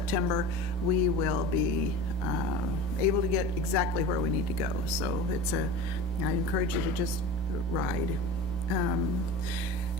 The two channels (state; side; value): normal; both; correlation 0.33